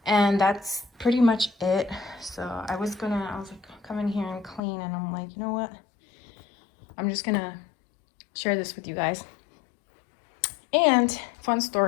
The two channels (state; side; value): drops out; right; at 4.6 s